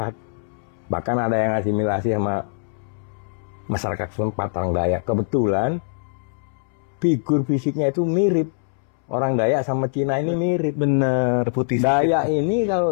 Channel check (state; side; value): silent; right; 64 dB below the other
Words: Bahkan ada yang asimilasi sama masyarakat setempat orang Dayak. Kebetulan figur fisiknya itu mirip. Orang Dayak sama Cina ini mirip. Bener, putih. Dayak ini